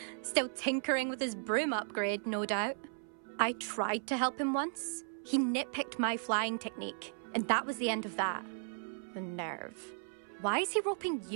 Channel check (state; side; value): silent; left; 54 dB below the other